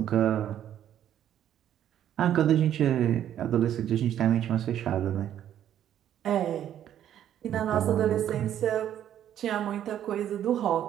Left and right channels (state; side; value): quieter; left; 10.7 dB